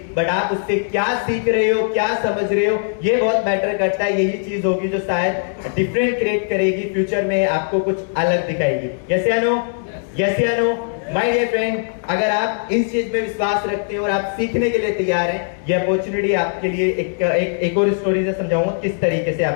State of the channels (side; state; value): right; silent; digital silence